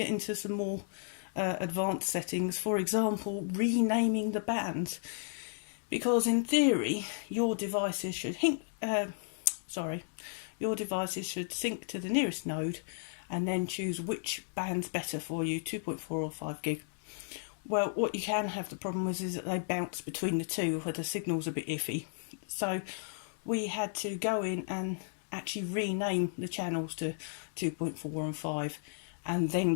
into some more advanced settings, for example, renaming the bands. Because in theory, your devices should sync to the nearest node and then choose which band's better for you, 2.4 or 5 gig. Well, what you can have the problem with is that they bounce between the two where the signal's a bit iffy. So we had to go in and actually rename the channels to 2.4 and 5 and then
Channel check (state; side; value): silent; right; digital silence